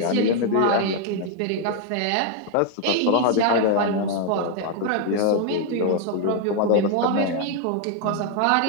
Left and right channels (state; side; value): different; both; correlation 0.00